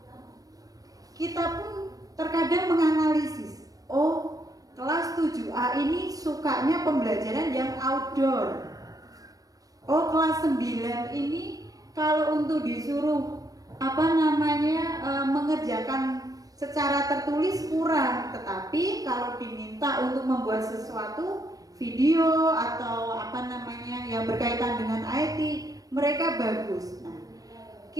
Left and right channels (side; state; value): left; late; 0.18 ms